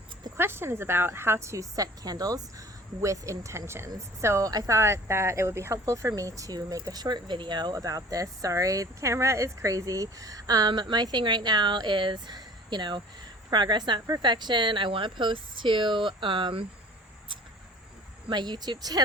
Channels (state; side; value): normal; both; correlation 0.45